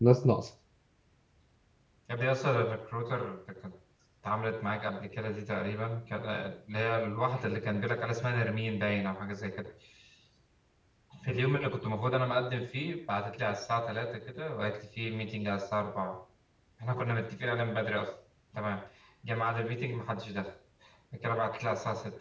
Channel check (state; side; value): identical; both; correlation 1.00